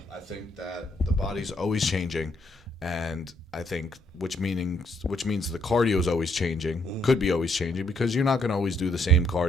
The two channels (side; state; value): both; normal; correlation 0.71